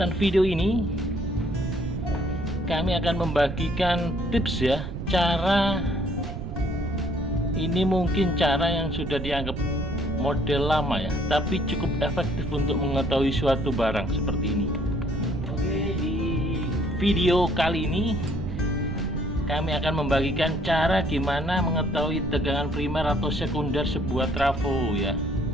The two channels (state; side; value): noise; right; rumble, 6 dB below the sound